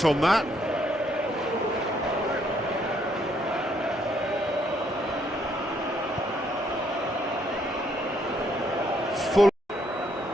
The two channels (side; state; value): both; normal; correlation 0.70